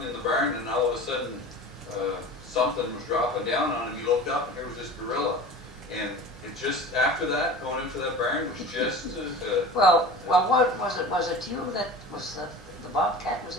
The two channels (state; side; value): normal; both; correlation 0.36